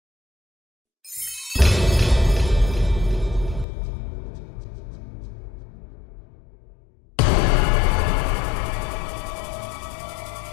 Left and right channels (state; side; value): drops out; right; at 3.7 s